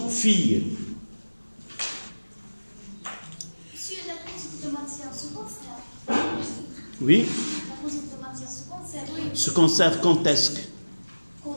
fille? Oui. Se conserve quand est-ce que?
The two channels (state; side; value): inverted; both; correlation -1.00